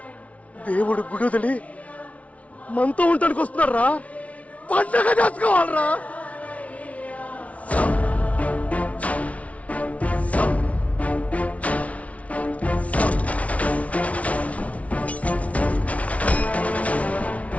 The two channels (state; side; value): late; right; 0.066 ms